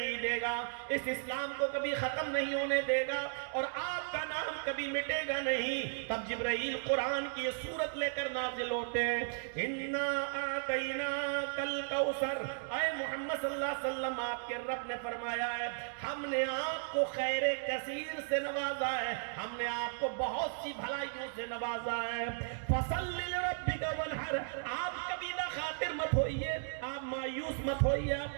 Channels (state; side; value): silent; left; digital silence